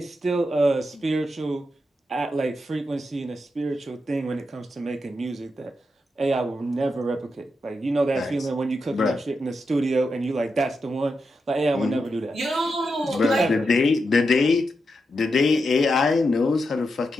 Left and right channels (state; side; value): normal; both; correlation 0.86